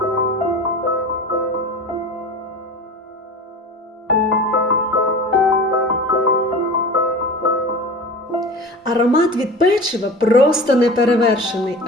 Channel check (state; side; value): normal; both; correlation 0.34